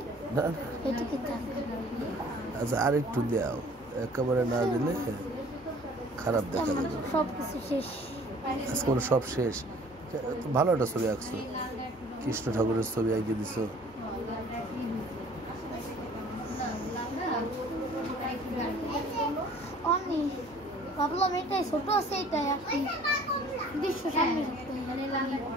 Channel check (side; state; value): both; normal; correlation 0.52